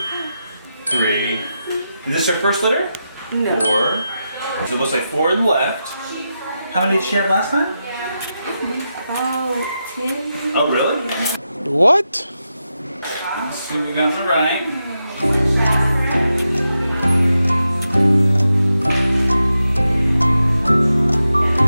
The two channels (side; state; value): both; inverted; correlation -0.88